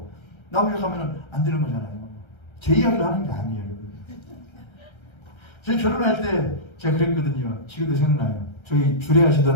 나오려고 하면 안 되는 거잖아요. 제 이야기를 하는 게 아니에요. 저희 결혼할 때 제가 그랬거든요. 지금도 생각나요. 저희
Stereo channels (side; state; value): right; late; 1.3 ms